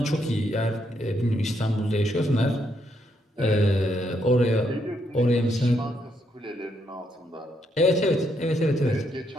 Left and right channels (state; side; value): normal; both; correlation 0.76